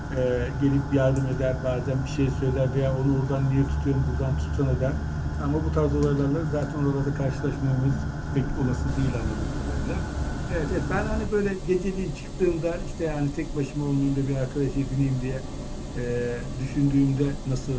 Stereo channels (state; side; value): identical; both; correlation 1.00